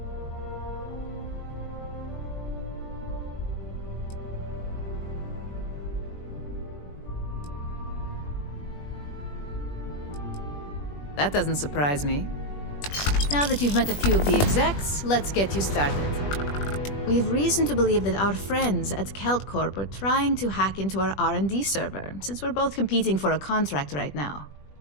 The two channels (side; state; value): right; late; 20 ms